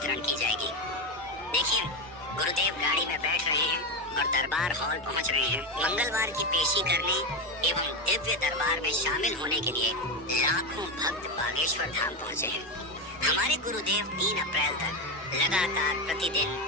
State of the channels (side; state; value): both; normal; correlation 0.13